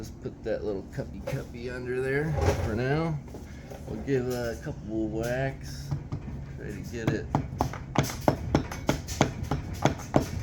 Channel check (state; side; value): identical; both; correlation 1.00